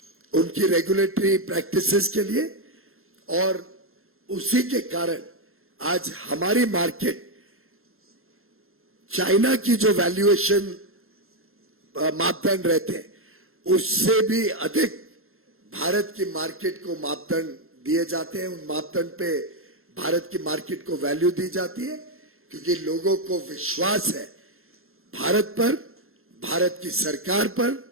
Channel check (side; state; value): left; late; 0.61 ms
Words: उनकी रेगुलेटरी प्रैक्टिसेस के लिए, और उसी के कारण आज हमारी मार्केट चाइना की जो वैल्यूएशन मापदंड रहते हैं, उससे भी अधिक भारत की मार्केट को मापदंड दिए जाते हैं। उन मापदंड पे भारत की मार्केट को वैल्यू दी जाती है, क्योंकि लोगों को विश्वास है भारत पर, भारत की सरकार पर,